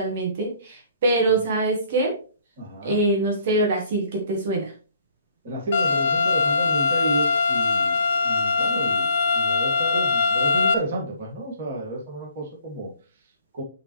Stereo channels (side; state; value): both; inverted; correlation -0.61